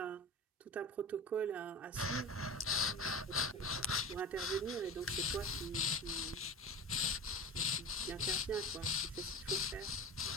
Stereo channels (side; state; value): both; normal; correlation 0.30